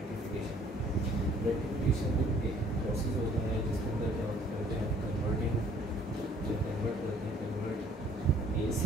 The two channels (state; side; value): normal; both; correlation 0.58